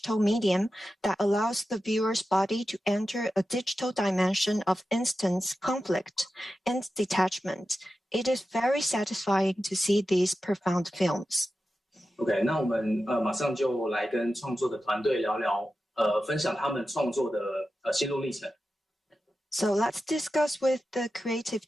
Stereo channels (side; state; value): both; normal; correlation 0.92